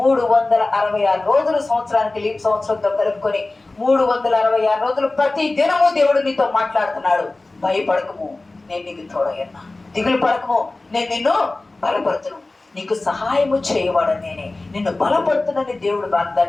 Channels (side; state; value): right; quieter; 3.1 dB